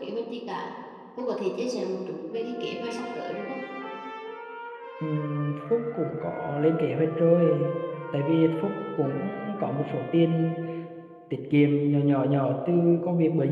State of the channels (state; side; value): identical; both; correlation 1.00